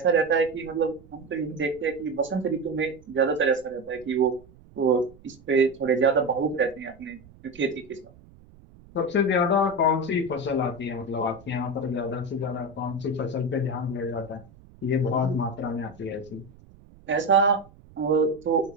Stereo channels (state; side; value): noise; right; rumble, 24 dB below the sound